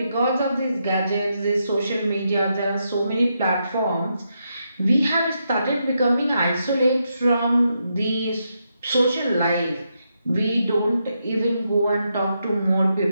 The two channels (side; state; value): both; inverted; correlation -0.82